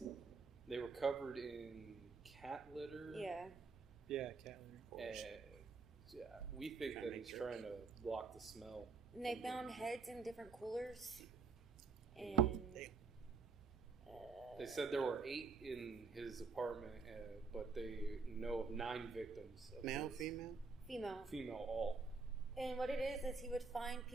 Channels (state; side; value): quieter; left; 4.4 dB